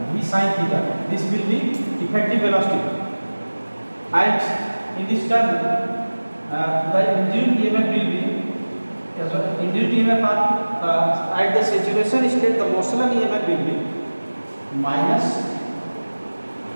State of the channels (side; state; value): both; inverted; correlation -1.00